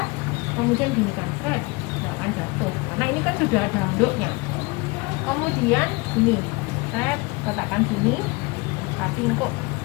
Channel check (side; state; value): right; quieter; 25.4 dB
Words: kemudian ginikan, set, nggak akan jatuh. Karena ini kan sudah ada handuknya. Kemudian ini, set, letakkan sini. Tapi kok